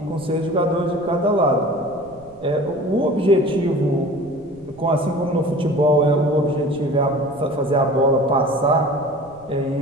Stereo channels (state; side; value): noise; right; rumble, 25 dB below the sound